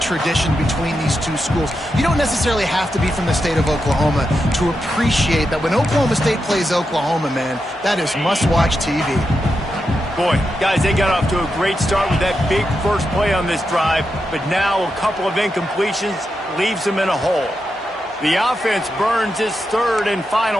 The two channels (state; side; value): normal; both; correlation 0.87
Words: between these two schools. You don't necessarily have to be from the state of Oklahoma to appreciate that when Oklahoma State plays Oklahoma, man, that is must-watch TV. Boy, guys, they got off to a great start with that big first play on this drive, but now a couple of incompletions leaves them in a hole. The offense burns its third and